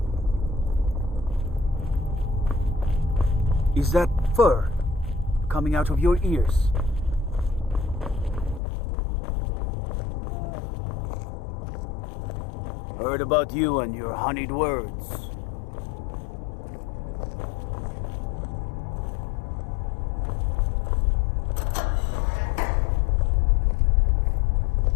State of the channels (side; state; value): right; drops out; at 8.6 s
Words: Is that fur coming out of your ears? Heard about you and your honeyed words.